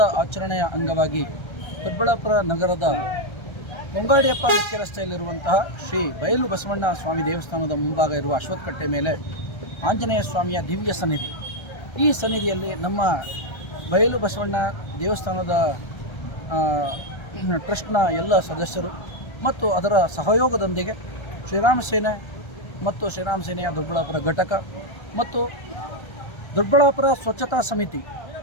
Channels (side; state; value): right; late; 1.3 ms